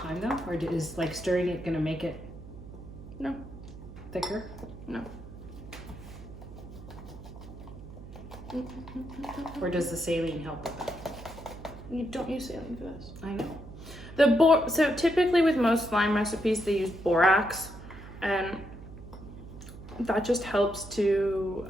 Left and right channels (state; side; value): noise; right; hum, 14 dB below the sound